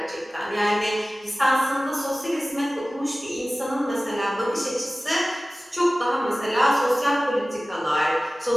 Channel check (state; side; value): normal; both; correlation 0.97